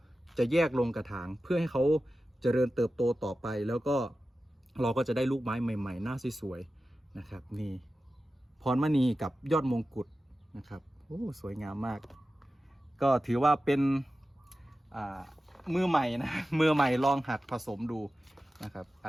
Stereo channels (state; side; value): normal; both; correlation 0.94